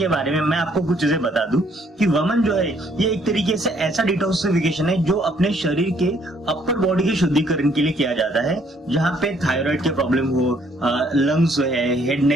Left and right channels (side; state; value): both; normal; correlation 0.65